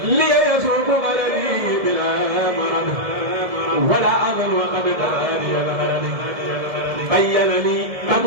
لي يسوق غلبي بلا مرض ولا أظن وقد قراني الغرد بين لي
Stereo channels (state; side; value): late; left; 1.7 ms